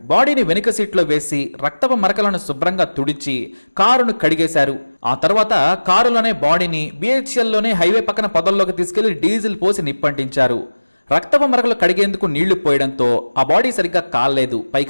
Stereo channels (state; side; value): inverted; both; correlation -1.00